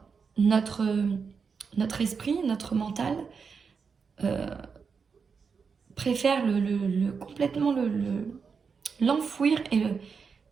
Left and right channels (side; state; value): left; quieter; 5.6 dB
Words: notre esprit, notre mental préfère complètement l'enfouir et